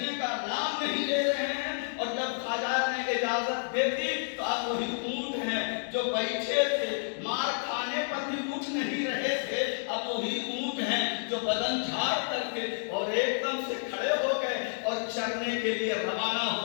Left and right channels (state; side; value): silent; right; digital silence